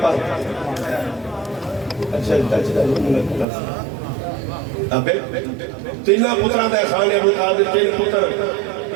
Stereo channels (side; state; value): left; drops out; at 3.5 s